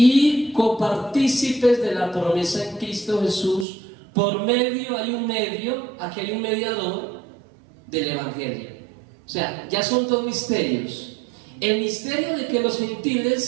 copartícipes de la promesa en Cristo Jesús. Por medio, hay un medio, aquí hay un mediador del Evangelio. O sea, ya son dos misterios. El misterio de que los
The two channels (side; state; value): left; drops out; at 3.7 s